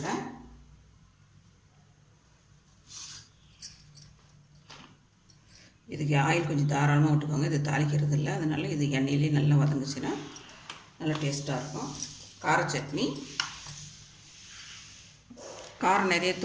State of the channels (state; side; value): identical; both; correlation 1.00